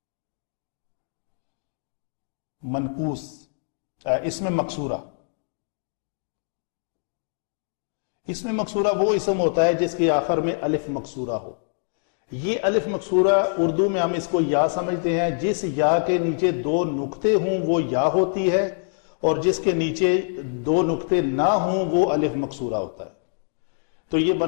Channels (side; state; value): right; silent; digital silence